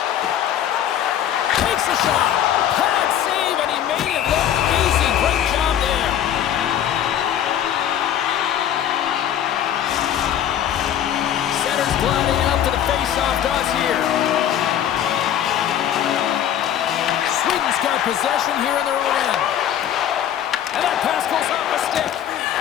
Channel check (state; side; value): quieter; right; 10.3 dB